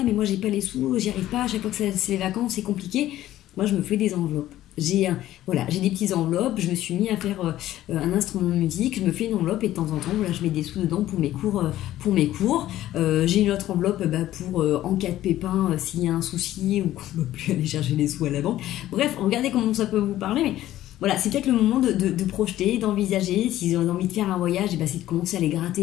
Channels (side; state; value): right; quieter; 13.9 dB